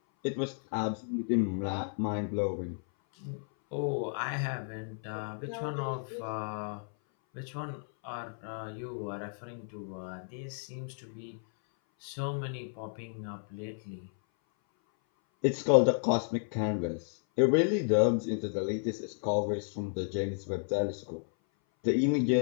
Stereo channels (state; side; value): silent; right; 56 dB below the other